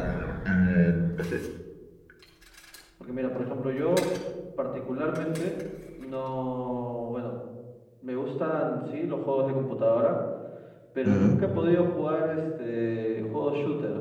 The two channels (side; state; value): both; identical; correlation 1.00